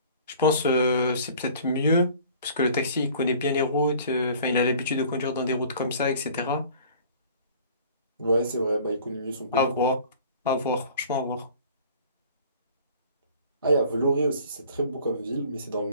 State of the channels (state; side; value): inverted; both; correlation -0.49